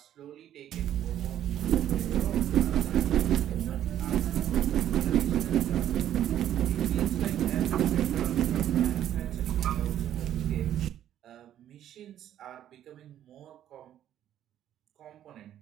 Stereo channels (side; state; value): left; quieter; 11.3 dB